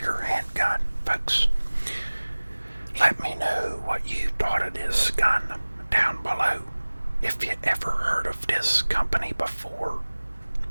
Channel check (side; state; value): both; inverted; correlation -1.00